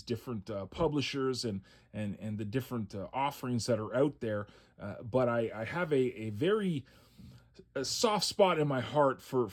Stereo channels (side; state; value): both; identical; correlation 1.00